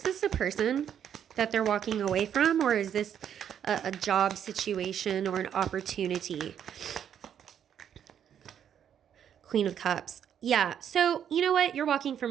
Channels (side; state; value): left; quieter; 9.1 dB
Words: a person that they're walking away from, or is this a job situation or an opportunity? Queen of Cups. Yeah, so you know what? You're walking